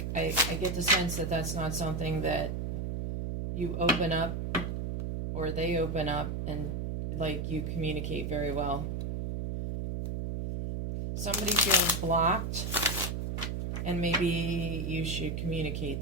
I get the sense that that's not something that you open up or they open up and like you communicate very well. Somebody feels blocked, and maybe you should communicate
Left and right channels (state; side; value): noise; right; hum, 3 dB below the sound